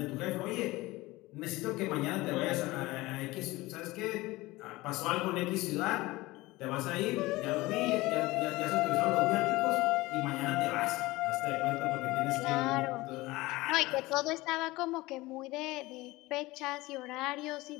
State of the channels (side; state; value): right; quieter; 20.2 dB